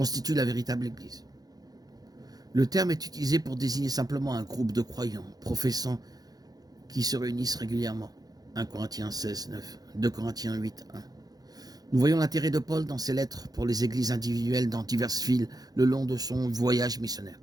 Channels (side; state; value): left; late; 0.19 ms